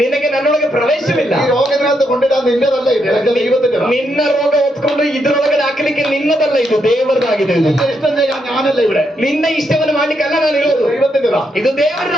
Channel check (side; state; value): both; normal; correlation 0.79